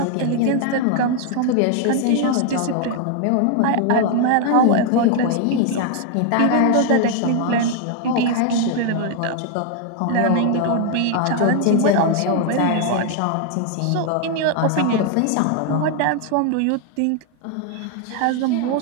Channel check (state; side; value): different; both; correlation 0.00